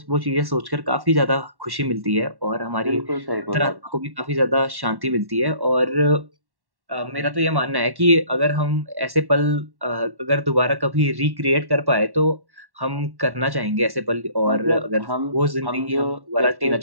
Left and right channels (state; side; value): late; left; 1.1 ms